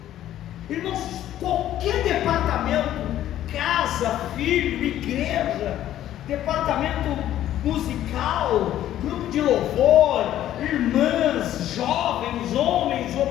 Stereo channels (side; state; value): right; quieter; 12.4 dB